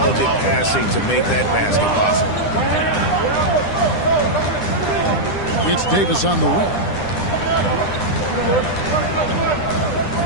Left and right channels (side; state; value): right; late; 10 ms